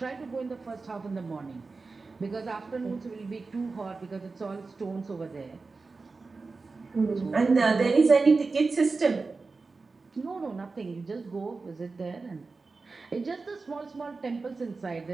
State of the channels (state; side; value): quieter; left; 4.0 dB